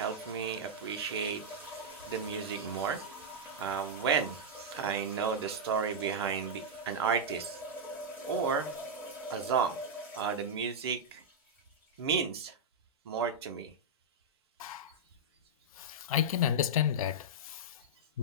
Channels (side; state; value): both; normal; correlation -0.06